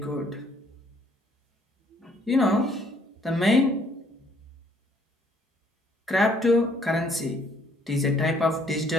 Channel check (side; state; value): both; normal; correlation 0.64